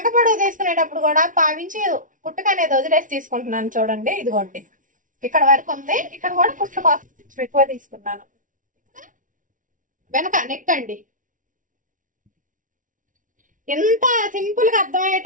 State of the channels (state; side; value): late; left; 0.38 ms